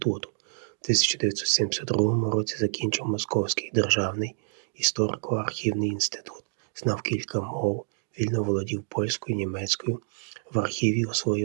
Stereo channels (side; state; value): left; silent; digital silence